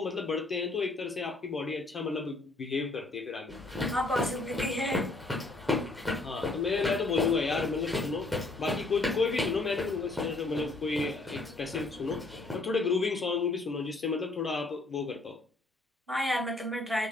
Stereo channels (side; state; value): right; quieter; 3.1 dB